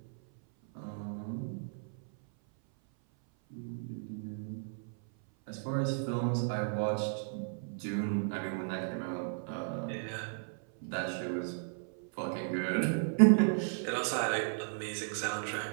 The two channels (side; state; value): left; silent; 55 dB below the other